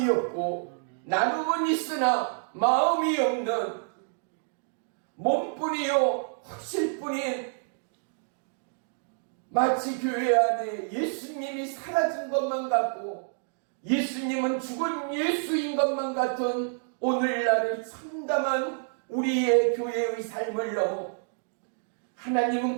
없고 나눔은 있으나 마음이 없는 몸뿐이요 확실뿐인 마치 교회 안에 예수님이 사라진 것만 같고 예수님은 죽은 예수인 것만 같은 오늘날의 참담한 우리의 교회의 삶을 넘어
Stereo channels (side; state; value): left; silent; digital silence